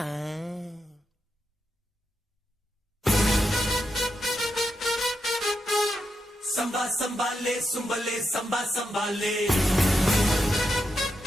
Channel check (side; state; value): both; normal; correlation 0.85